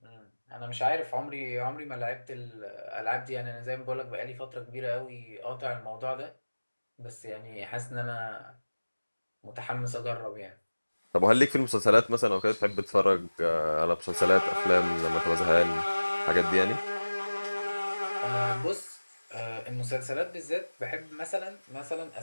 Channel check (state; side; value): inverted; both; correlation -1.00